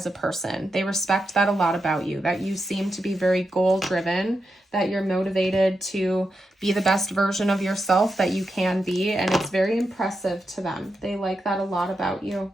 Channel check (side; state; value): both; normal; correlation 0.87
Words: a person. They respect that a lot about you, that you seem to be very goal-driven, that you're motivated to be the best version of yourself that you can be, and it's very impressive to them. They like that a lot about you.